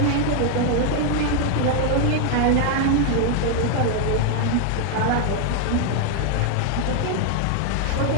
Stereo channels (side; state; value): both; different; correlation 0.00